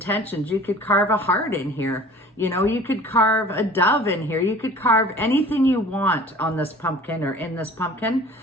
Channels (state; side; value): normal; both; correlation 0.45